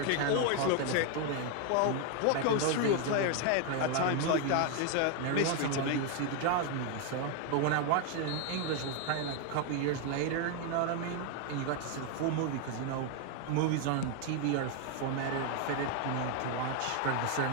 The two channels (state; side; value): different; both; correlation 0.01